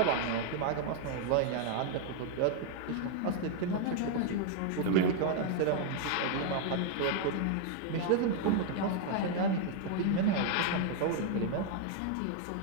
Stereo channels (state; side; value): different; both; correlation 0.00